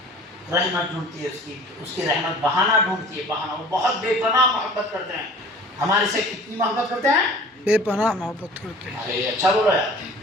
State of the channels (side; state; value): both; normal; correlation 0.46